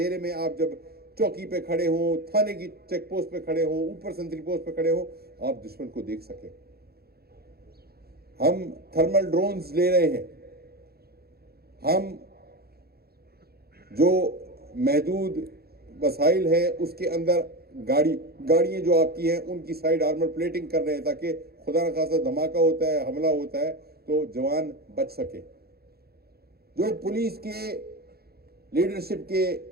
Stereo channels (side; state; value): left; late; 0.46 ms